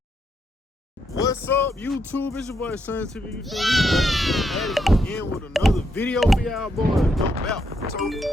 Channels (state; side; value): normal; both; correlation 0.79